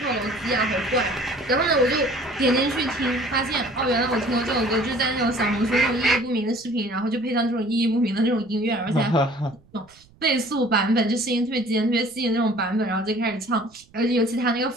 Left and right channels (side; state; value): right; noise; rumble, 29 dB below the sound